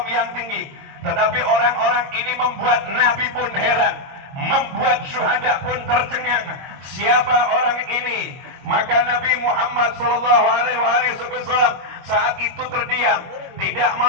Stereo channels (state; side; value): late; left; 22 ms